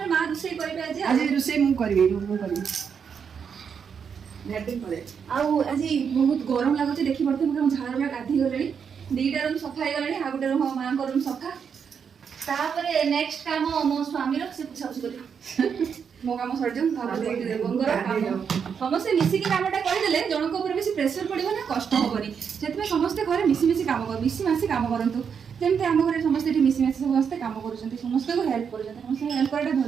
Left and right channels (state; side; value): quieter; left; 6.9 dB